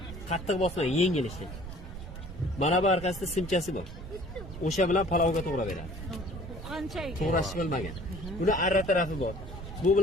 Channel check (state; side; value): noise; right; rumble, 11 dB below the sound